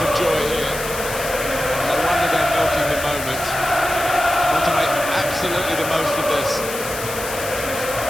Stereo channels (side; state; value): left; noise; hiss, 9 dB below the sound